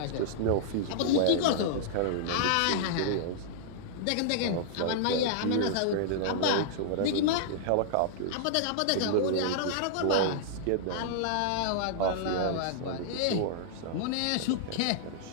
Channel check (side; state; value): both; different; correlation -0.01